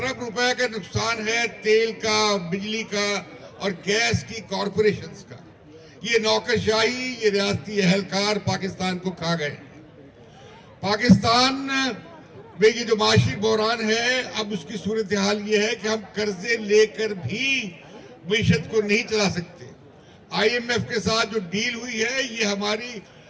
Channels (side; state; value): both; identical; correlation 1.00